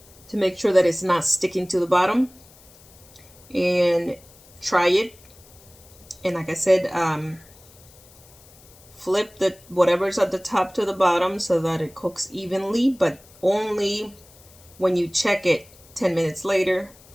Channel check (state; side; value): noise; left; hiss, 25 dB below the sound